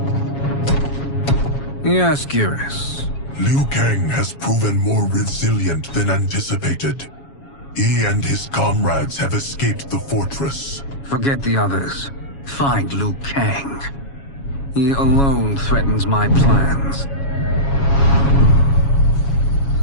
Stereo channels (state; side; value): late; right; 7.2 ms